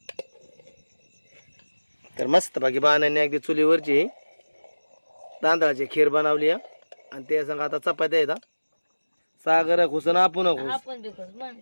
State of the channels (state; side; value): inverted; both; correlation -1.00